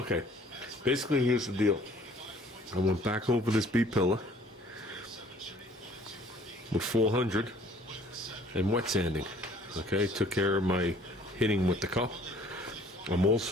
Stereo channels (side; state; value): both; normal; correlation 0.55